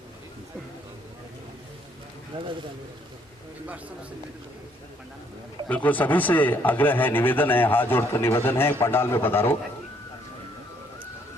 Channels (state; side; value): normal; both; correlation 0.67